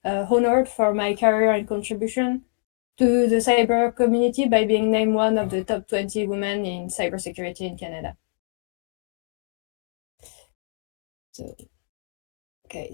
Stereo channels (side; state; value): right; silent; digital silence